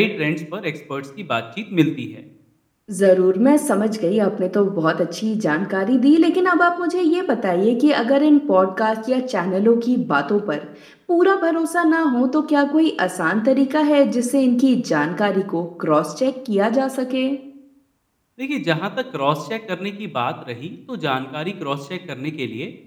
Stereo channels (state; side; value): identical; both; correlation 1.00